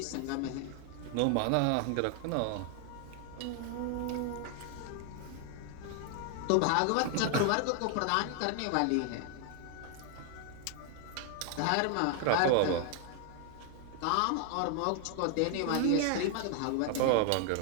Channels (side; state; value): both; different; correlation 0.00